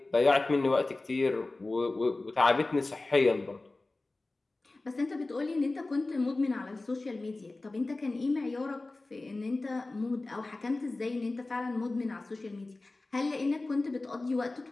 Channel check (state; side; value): quieter; right; 3.1 dB